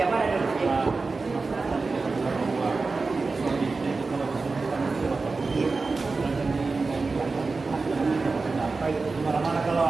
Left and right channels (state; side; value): quieter; left; 4.0 dB